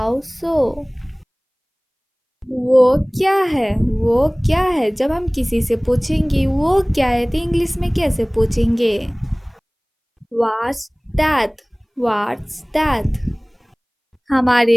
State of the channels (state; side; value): identical; both; correlation 1.00